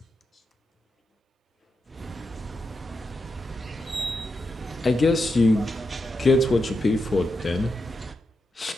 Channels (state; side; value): normal; both; correlation 0.86